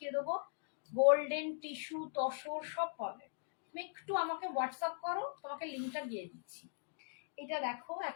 দেবো। গোল্ডেন টিস্যু তসর সব পাবে, তুমি একটু আমাকে হোয়াটসঅ্যাপ করো, তোমাকে লিঙ্কটা দিয়ে দিচ্ছি। এটা দেখো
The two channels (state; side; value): silent; right; digital silence